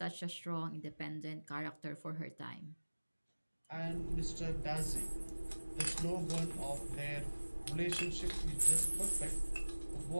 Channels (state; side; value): inverted; both; correlation -1.00